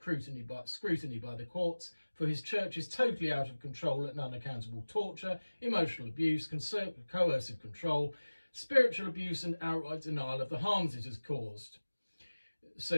scrutiny by the courts, for his church is totally out of control and unaccountable torture, emotional abuse, coercive control, spiritual abuse and outright denial of the harms it has caused.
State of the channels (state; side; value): inverted; both; correlation -1.00